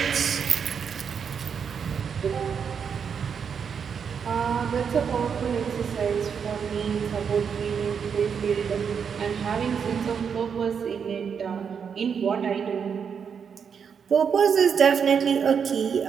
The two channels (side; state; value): left; quieter; 6.8 dB